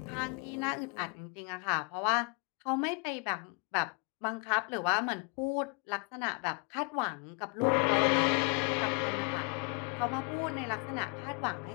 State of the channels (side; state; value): right; quieter; 31.5 dB